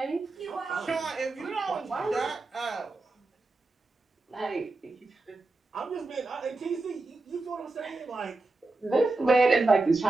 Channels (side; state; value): left; quieter; 3.2 dB